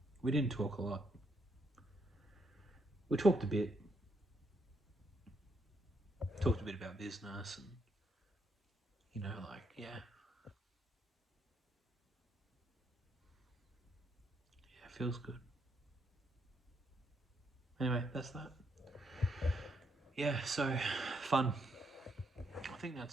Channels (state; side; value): normal; both; correlation 0.76